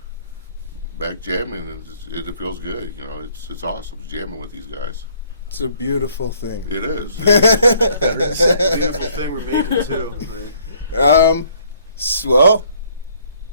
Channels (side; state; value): both; inverted; correlation -0.62